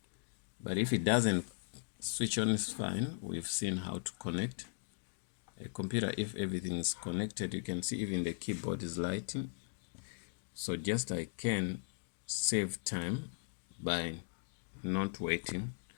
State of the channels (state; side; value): silent; right; digital silence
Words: But if it doesn't switch on, is fine. We've seen how to connect a computer. If everything is connected, you can see even the keyboard is lighting. So just I can save time by not waiting